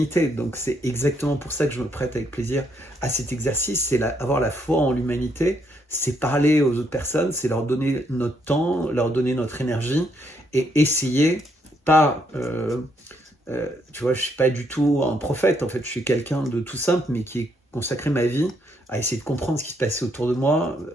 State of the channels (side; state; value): both; normal; correlation 0.74